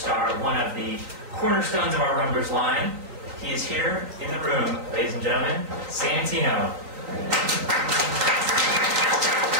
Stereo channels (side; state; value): left; late; 3.9 ms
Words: one of the cornerstones of our Rumblers line. He is here in the room, ladies and gentlemen, Santino.